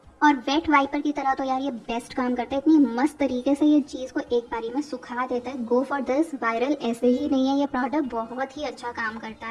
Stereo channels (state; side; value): identical; both; correlation 1.00